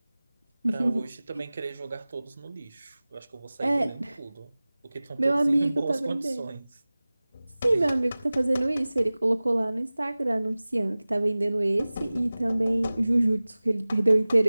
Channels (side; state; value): both; inverted; correlation -0.99